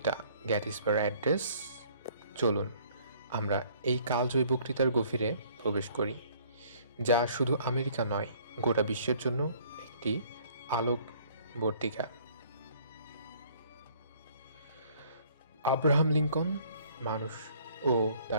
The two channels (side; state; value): both; inverted; correlation -0.58